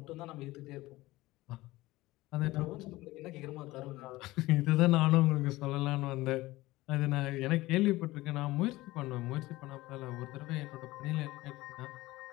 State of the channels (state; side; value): quieter; right; 18.8 dB